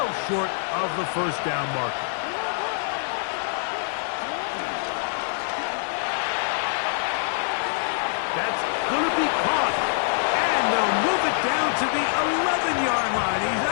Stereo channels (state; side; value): silent; right; digital silence